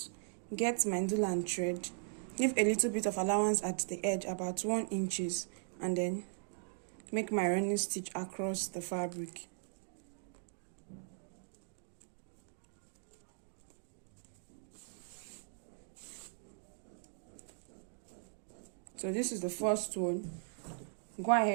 get my needle and thread, leave a little bit of allowance at the edge, about 1 inches, and then make my running stitch across the fabric. So this is the first one. Go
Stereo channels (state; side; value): silent; left; digital silence